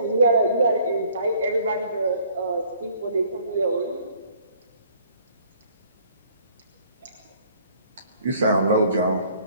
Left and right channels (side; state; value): both; inverted; correlation -0.58